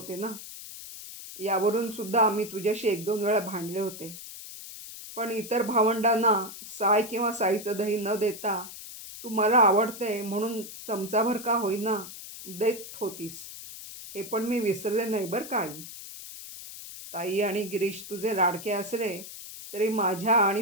ना. यावरून सुद्धा आम्ही तुझ्याशी 1-2 वेळा भांडले होते. पण इतर भावंडांना साय किंवा साईचं दही न देता तू मला आवडते म्हणून चमचाभर का होईना देत होतीस, हे पण मी विसरले नाही बरं का आई. ताई आणि गिरीश तुझे लाडके असले तरी माझ्या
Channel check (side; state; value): left; noise; hiss, 12 dB below the sound